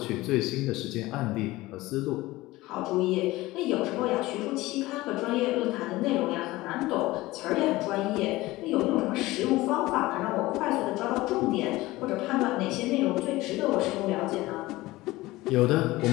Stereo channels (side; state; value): right; quieter; 18.9 dB